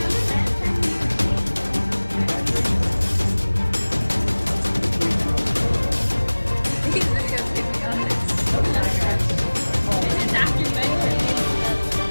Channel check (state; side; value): inverted; both; correlation -1.00